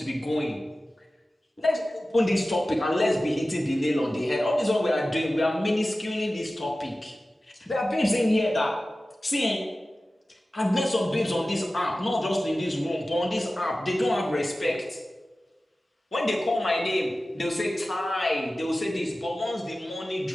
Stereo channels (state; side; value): normal; both; correlation 0.96